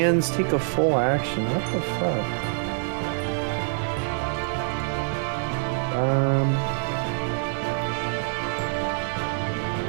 take a full action? What the fuck?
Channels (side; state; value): left; silent; 61 dB below the other